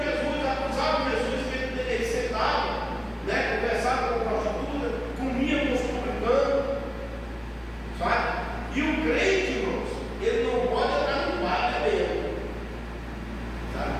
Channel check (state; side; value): identical; both; correlation 1.00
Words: Jesus, acusava Jesus que ele sentava, né, conversava com a prostituta, comia com os publicanos, sabe? E o crente, irmãos, ele não pode entrar no bar bebendo, sabe?